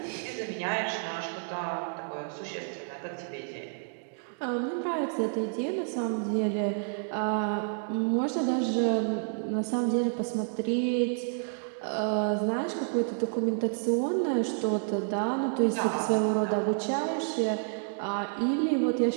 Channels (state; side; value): silent; left; digital silence